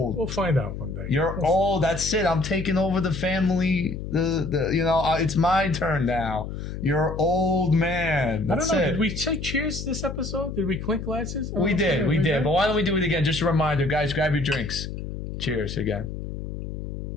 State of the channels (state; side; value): noise; left; hum, 7 dB below the sound